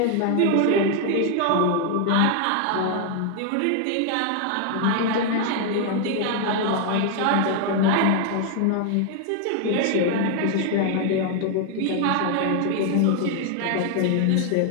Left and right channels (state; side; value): different; both; correlation 0.00